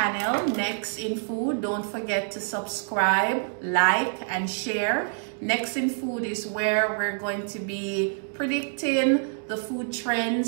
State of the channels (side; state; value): left; silent; digital silence